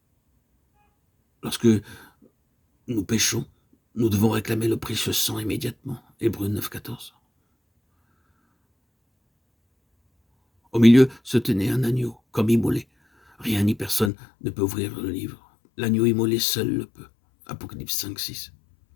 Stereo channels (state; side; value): drops out; right; at 14.1 s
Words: Lorsque nous péchons, nous devons réclamer le précieux sang immédiatement. Hébreux 9, 14. Au milieu se tenait un agneau, comme immolé. Rien ni personne ne peut ouvrir le livre. L'agneau immolé seul le peut. Apocalypse 5, 6.